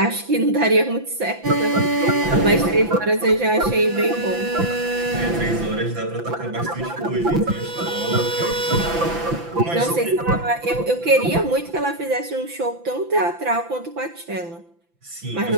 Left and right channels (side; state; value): left; late; 5.9 ms